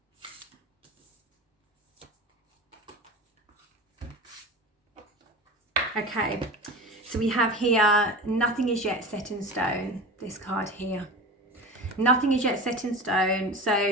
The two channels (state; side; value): normal; both; correlation 0.30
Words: Okay, so we have here, nothing is yet set in stone, this card here. Nothing is yet set in stone.